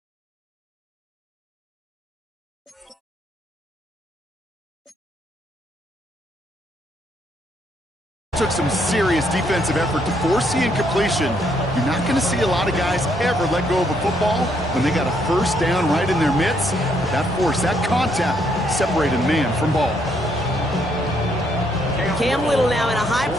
Took some serious defensive effort to force the incompletion. You're not going to see a lot of guys ever let go of a football when they got a 1st down right in their midst. That force, that contact, separated man from ball. Cam Little now in a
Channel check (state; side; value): normal; both; correlation 0.72